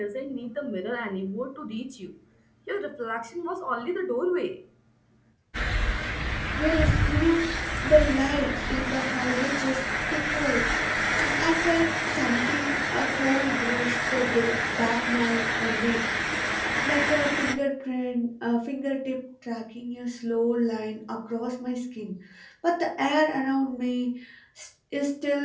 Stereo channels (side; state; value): both; identical; correlation 1.00